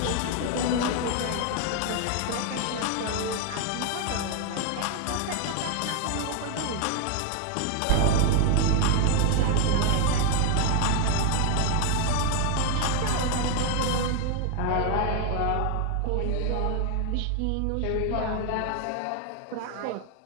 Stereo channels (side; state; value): both; different; correlation 0.00